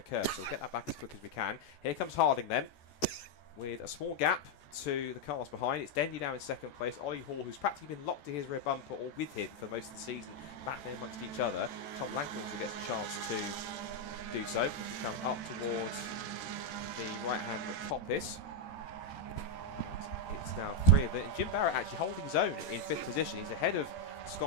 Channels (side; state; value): right; late; 14 ms